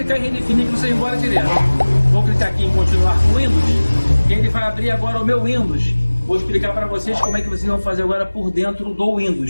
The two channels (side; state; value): both; inverted; correlation -1.00